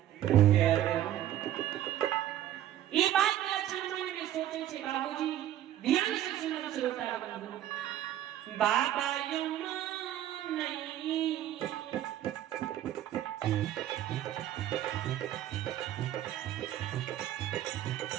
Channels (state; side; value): quieter; left; 12.3 dB